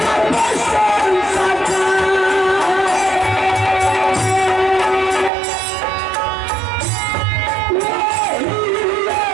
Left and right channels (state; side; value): drops out; left; at 5.3 s